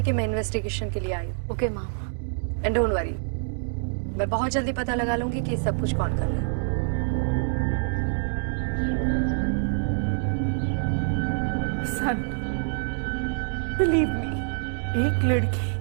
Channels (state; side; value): silent; left; digital silence